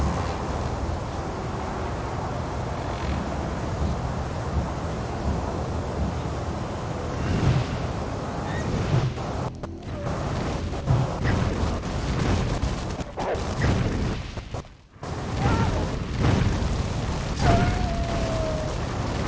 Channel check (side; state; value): both; identical; correlation 1.00